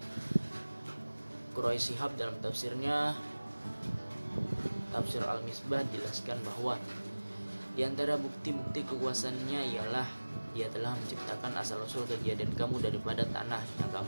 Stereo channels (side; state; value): both; inverted; correlation -1.00